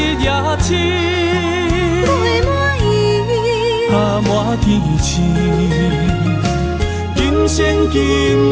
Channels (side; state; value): both; identical; correlation 1.00